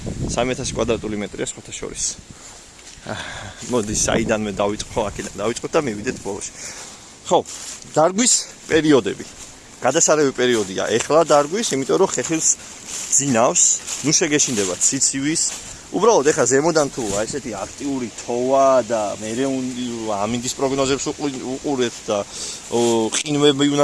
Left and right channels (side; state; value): both; identical; correlation 1.00